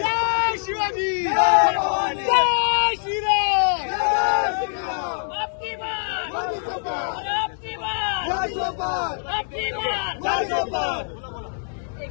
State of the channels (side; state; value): right; silent; 63 dB below the other